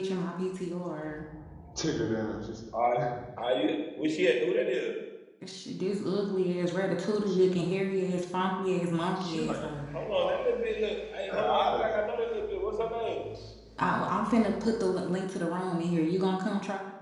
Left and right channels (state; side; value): identical; both; correlation 1.00